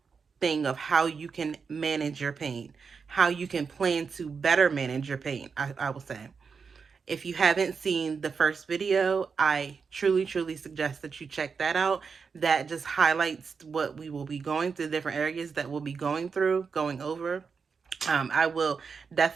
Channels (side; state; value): left; quieter; 5.5 dB